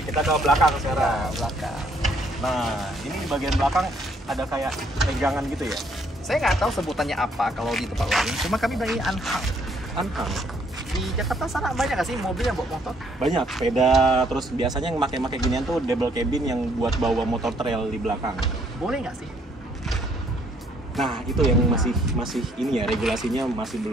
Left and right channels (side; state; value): both; normal; correlation 0.67